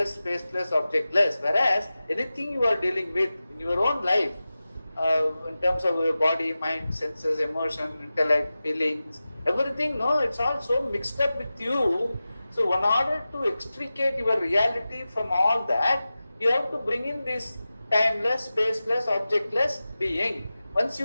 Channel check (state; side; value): inverted; both; correlation -0.95